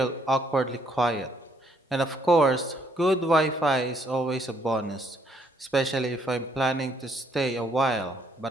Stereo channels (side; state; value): both; normal; correlation 0.69